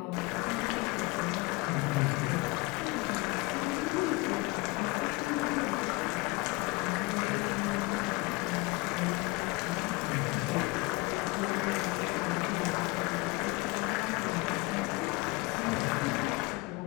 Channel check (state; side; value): quieter; right; 24.7 dB